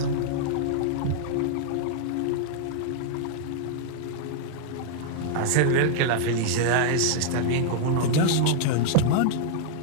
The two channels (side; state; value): both; different; correlation -0.01